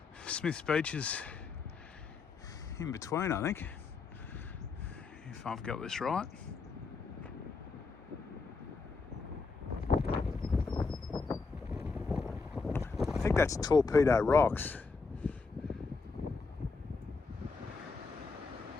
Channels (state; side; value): quieter; right; 4.4 dB